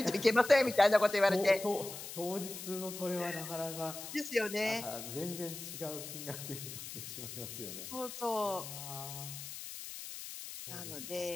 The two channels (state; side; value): noise; left; hiss, 10 dB below the sound